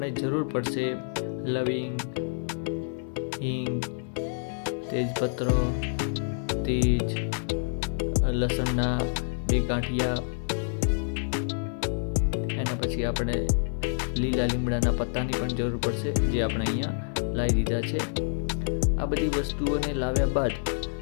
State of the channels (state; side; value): silent; right; 59 dB below the other